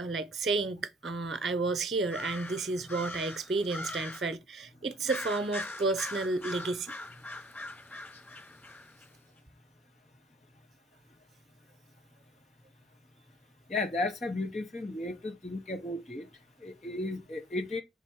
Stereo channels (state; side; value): normal; both; correlation 0.57